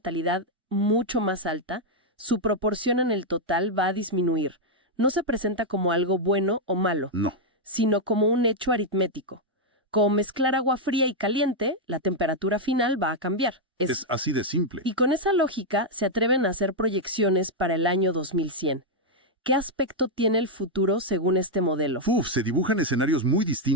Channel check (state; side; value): normal; both; correlation -0.02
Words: mucho más alta, su proporción en el total va a disminuir. No se presenta como algo bueno o malo, No. sino como un hecho aritmético. Como mezclar agua fría y caliente, la temperatura final va a cambiar. Es así de simple. Y con esa lógica se atreven a hacer proyecciones para el año 2100. ¿Qué aspecto tiene el futuro según este modelo? Se dibujan escenarios muy